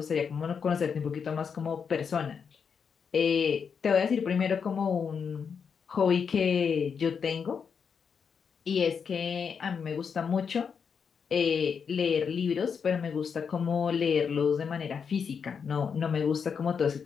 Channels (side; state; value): right; quieter; 6.4 dB